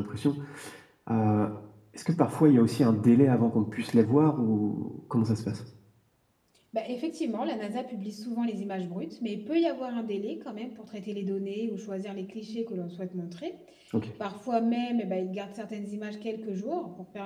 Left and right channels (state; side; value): identical; both; correlation 1.00